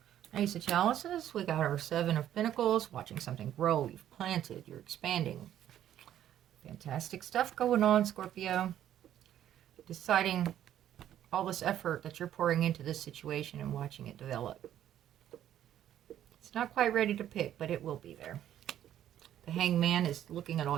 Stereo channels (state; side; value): quieter; left; 11.3 dB